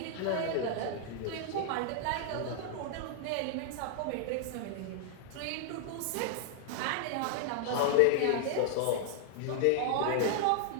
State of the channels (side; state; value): both; different; correlation 0.00